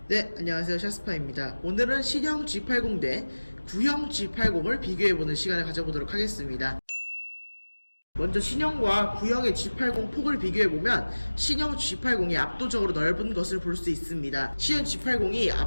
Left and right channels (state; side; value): inverted; both; correlation -1.00